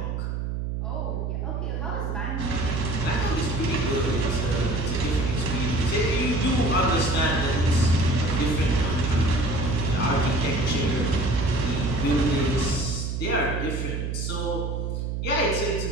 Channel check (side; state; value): right; noise; hum, 2 dB below the sound